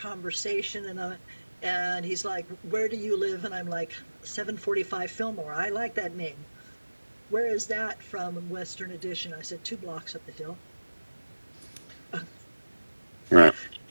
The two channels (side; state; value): both; inverted; correlation -1.00